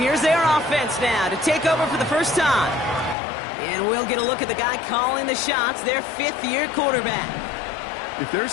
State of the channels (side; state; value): right; drops out; at 3.2 s